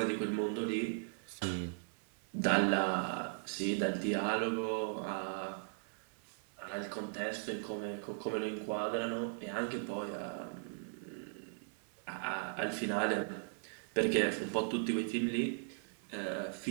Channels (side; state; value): left; silent; digital silence